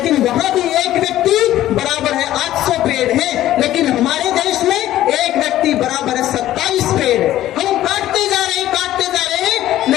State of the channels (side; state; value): right; quieter; 13.7 dB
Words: वहां भी एक व्यक्ति बराबर है 800 पेड़ है। लेकिन हमारे देश में एक व्यक्ति बराबर है 27 पेड़। हम काटते जा रहे हैं,